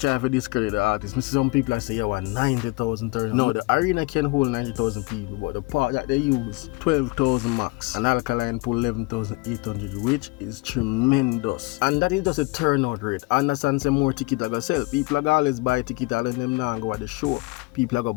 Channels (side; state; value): right; quieter; 24.6 dB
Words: to discredit the artist. Some people say, yeah, 90,000 turnout. No, the arena can hold 90,000 people, but the part that they use, 12,000 max. And Alkaline pull 11,800, which is tremendous. And that is just a turnout rate. Understand some more tickets are gonna sell. People are gonna always buy tickets and them now go at the show. People are gonna